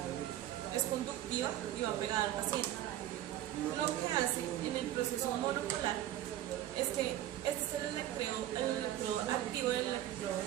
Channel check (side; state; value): left; quieter; 12.9 dB